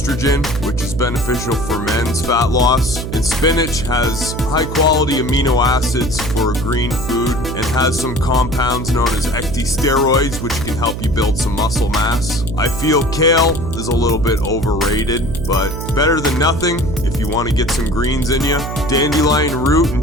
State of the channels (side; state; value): right; noise; hum, 6 dB below the sound